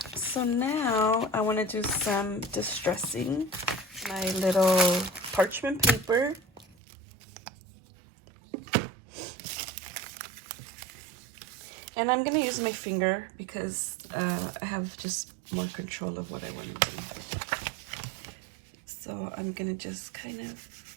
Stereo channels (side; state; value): left; drops out; at 6.8 s